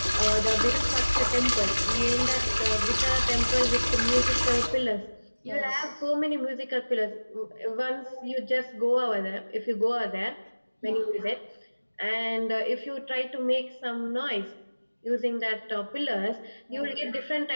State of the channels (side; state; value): both; inverted; correlation -1.00